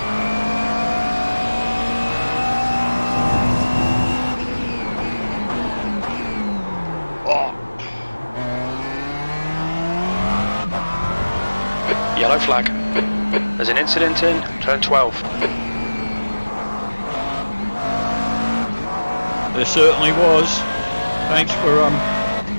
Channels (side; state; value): both; inverted; correlation -1.00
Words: Yellow flag. There's an incident in turn 12. There certainly was. Thanks for